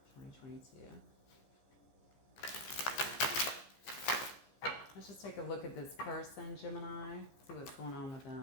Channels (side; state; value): right; late; 15 ms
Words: 2022. Let's just take a look at this person, Gemini. See what's going on with